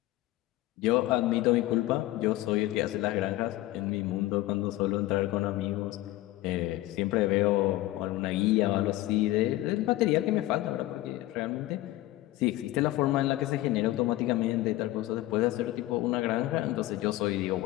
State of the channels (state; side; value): quieter; right; 16.7 dB